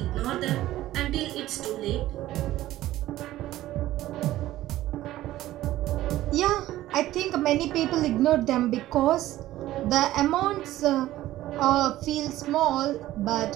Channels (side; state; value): left; quieter; 15.0 dB